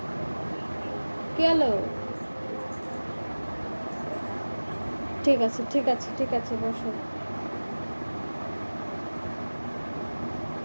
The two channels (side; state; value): both; inverted; correlation -1.00